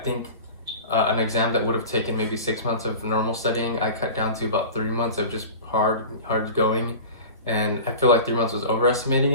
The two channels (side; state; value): both; inverted; correlation -0.35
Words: an exam that would have taken maybe 6 months of normal studying, I cut down to about 3 months of just hard going. And I feel like 3 months was overestimating